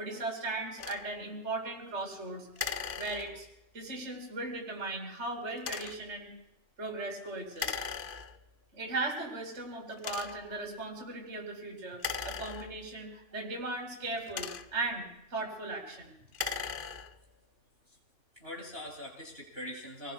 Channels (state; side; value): late; left; 2.5 ms